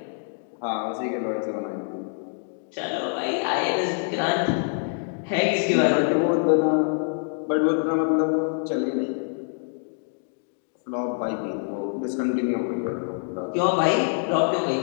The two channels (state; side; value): silent; right; digital silence